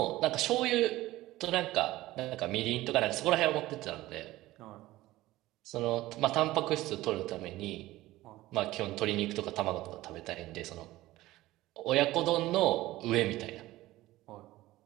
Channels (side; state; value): left; quieter; 17.1 dB